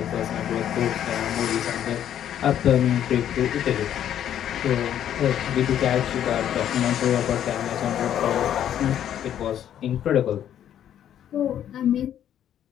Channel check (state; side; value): quieter; right; 10.4 dB